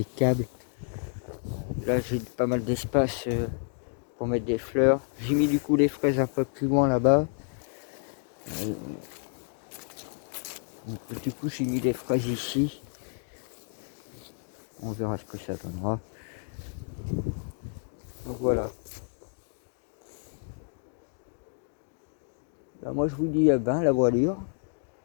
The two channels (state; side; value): silent; right; 58 dB below the other